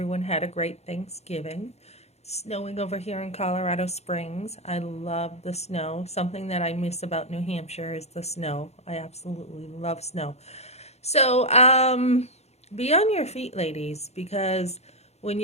had a great Thanksgiving. It's snowing over here in Colorado Springs. I love the snow. Something that I miss about New Hampshire is the snow. I absolutely love snow. So, be on your feet, ladies, because when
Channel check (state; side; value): late; right; 0.31 ms